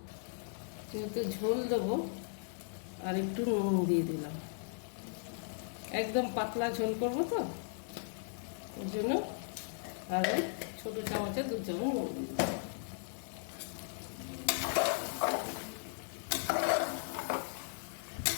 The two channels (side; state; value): right; silent; digital silence